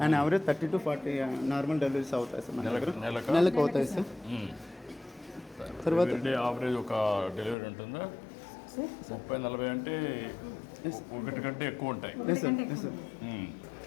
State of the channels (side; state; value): right; drops out; at 7.6 s